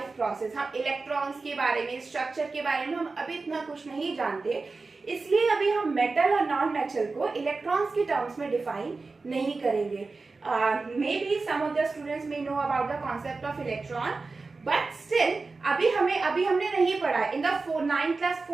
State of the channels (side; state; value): left; quieter; 3.9 dB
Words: process. हम इलेक्ट्रॉन्स के बारे में, स्ट्रक्चर के बारे में हम अभी इतना कुछ नहीं जानते, इसलिए अभी हम मेटल और नॉन मेटल को इलेक्ट्रॉन्स के टर्म्स में डिफाइन नहीं करेंगे। May be some of the students may know about the concept of electron, but still अभी हमने नहीं पढ़ा। In the 9th class